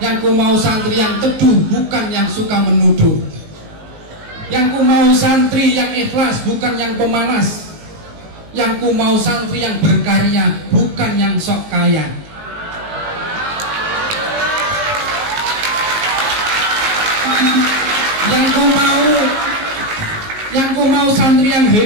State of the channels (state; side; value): late; left; 19 ms